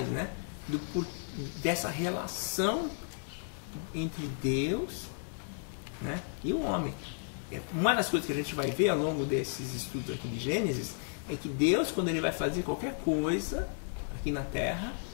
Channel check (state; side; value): silent; right; digital silence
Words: né, dessa relação entre Deus, né, e o homem. Uma das coisas que a gente vai ver ao longo desses estudos aqui de Gênesis é que Deus, quando ele vai fazer qualquer coisa aqui na Terra,